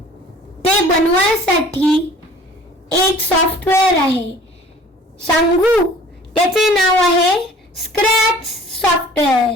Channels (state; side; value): normal; both; correlation 0.49